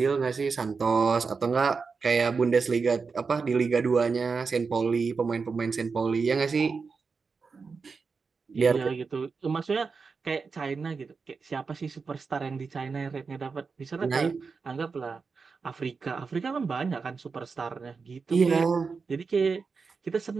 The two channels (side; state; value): left; quieter; 4.9 dB